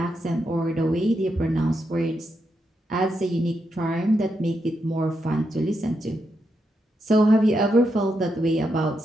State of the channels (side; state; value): both; normal; correlation 0.83